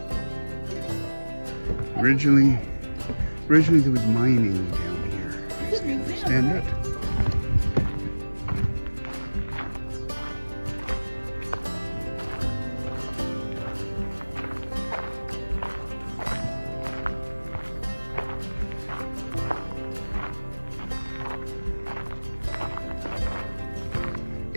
Originally there was mining down here, as I understand it.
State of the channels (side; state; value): both; inverted; correlation -1.00